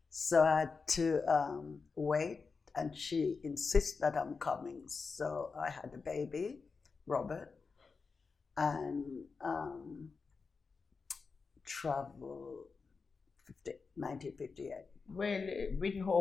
So I had to wait, and she insists that I'm coming. So I had a baby, Robert, and traveled 1958. Well, it didn't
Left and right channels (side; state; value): right; quieter; 4.8 dB